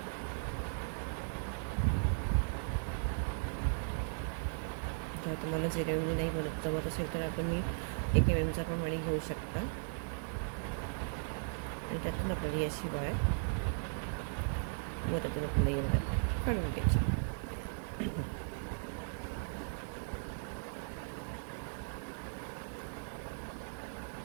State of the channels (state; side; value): silent; left; digital silence